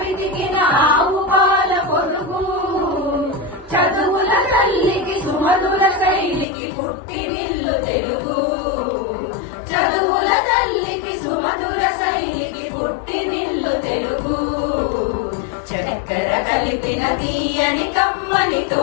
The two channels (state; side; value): drops out; right; at 6.5 s